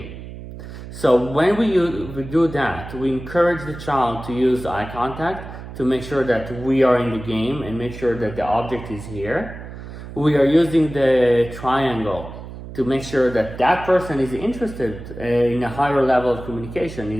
So when we do that, we encourage the child to use eye contact to make sure that we are in the game and make sure that the object is here. We are using the triangle to make sure that that person is interested in a higher level of communication,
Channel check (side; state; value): right; noise; hum, 12 dB below the sound